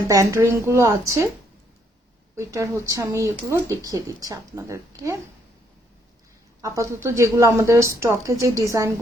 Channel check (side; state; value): both; normal; correlation 0.71